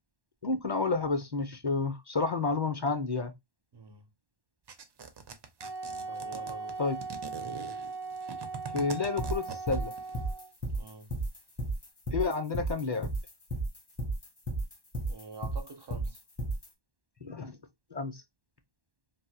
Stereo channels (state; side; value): late; left; 1.1 ms